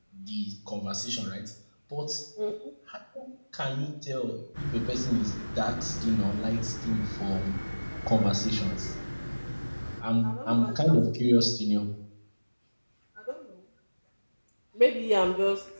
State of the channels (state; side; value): inverted; both; correlation -1.00